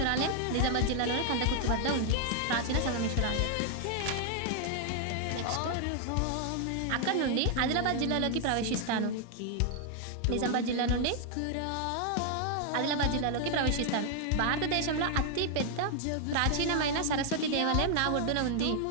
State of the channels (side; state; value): both; different; correlation 0.00